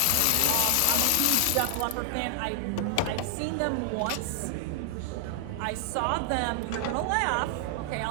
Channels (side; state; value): both; different; correlation 0.00